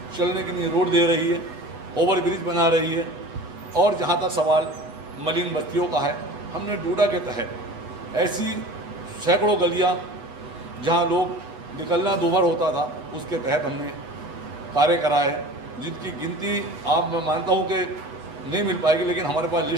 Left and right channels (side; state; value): left; late; 8.1 ms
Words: चलने के लिए रोड दे रही है, ओवर ब्रिज बना रही है। और जहाँ तक सवाल मलिन बस्तियों का है, हमने डूडा के तहत ऐसी सैकड़ों गलियाँ जहाँ लोग निकलना दूभर होता था, उसके तहत हमने कार्य कराए, जिनकी गिनती आप, मैं मानता हूँ कि नहीं मिल पाएगी, लेकिन हमारे पास